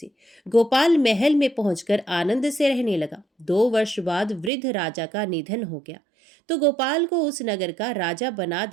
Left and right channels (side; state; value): left; drops out; at 4.5 s